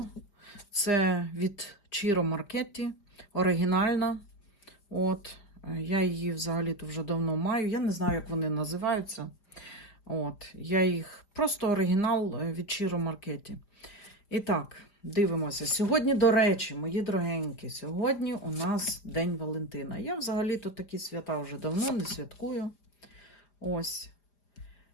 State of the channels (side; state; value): right; late; 4.9 ms